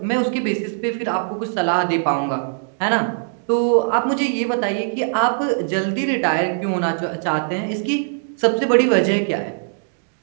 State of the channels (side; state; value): left; silent; digital silence